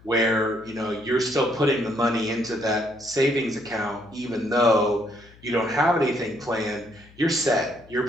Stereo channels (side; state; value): left; noise; hum, 25 dB below the sound